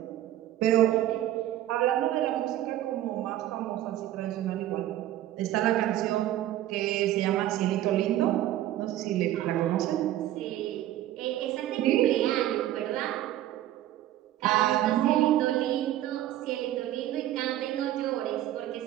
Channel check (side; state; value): left; quieter; 13.6 dB